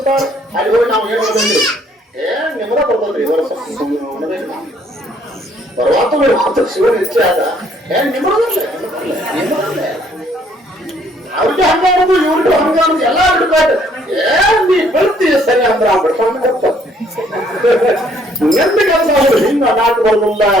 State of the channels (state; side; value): normal; both; correlation 0.64